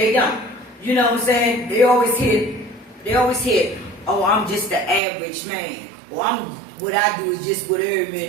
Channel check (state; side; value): drops out; left; at 5.0 s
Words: don't. You know what I'm saying? They always hit, oh, I'm just the average man. Or what I do is just what every